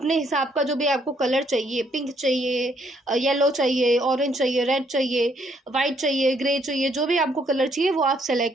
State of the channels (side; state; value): both; normal; correlation 0.69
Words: हिसाब का, जो भी आपको कलर चाहिए, पिंक चाहिए, येलो चाहिए, ऑरेंज चाहिए, रेड चाहिए, वाइट चाहिए, ग्रे चाहिए, जो भी आपको कलर चाहिए वो आप